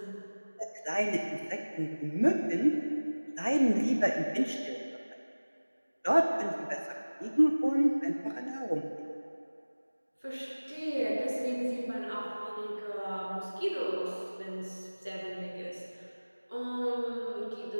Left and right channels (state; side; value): inverted; both; correlation -1.00